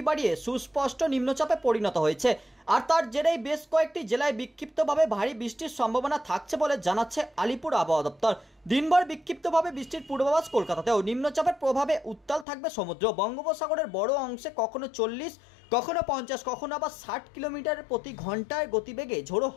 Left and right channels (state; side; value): drops out; right; at 12.5 s